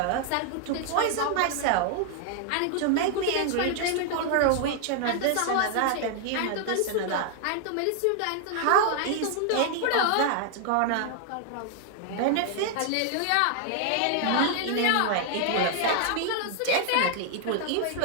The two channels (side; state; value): both; different; correlation 0.00